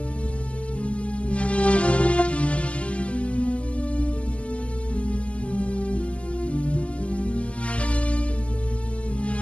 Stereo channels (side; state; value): right; late; 0.060 ms